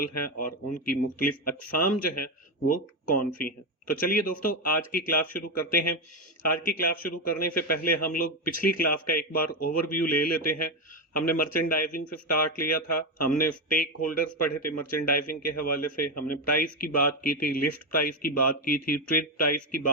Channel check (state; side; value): normal; both; correlation 0.09